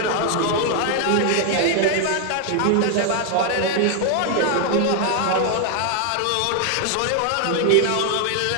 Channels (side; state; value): both; different; correlation 0.00